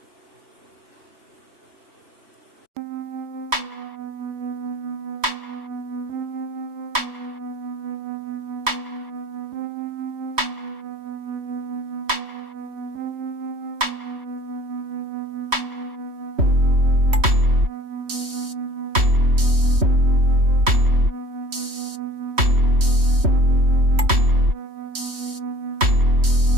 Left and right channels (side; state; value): left; late; 3.1 ms